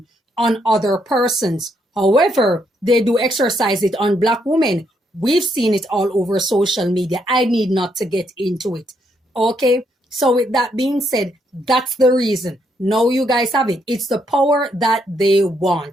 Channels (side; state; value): both; normal; correlation 0.75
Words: on other persons. However, they do exercise it on black women. We've seen it all over social media. I need not to get into it. Okay? So with that being said, that's the reason. Now you guys have it. It's the power that they